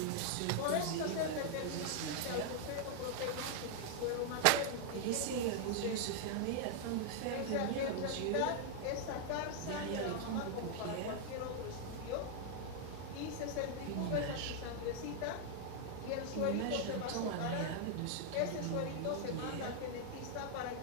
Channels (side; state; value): both; different; correlation 0.00